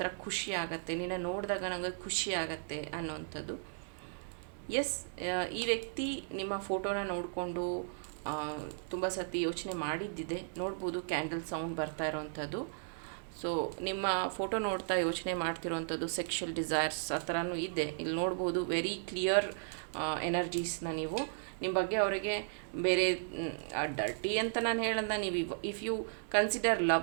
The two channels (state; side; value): silent; left; digital silence